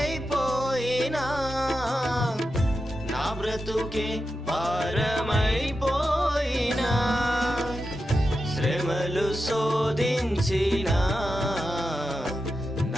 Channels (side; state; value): both; normal; correlation 0.90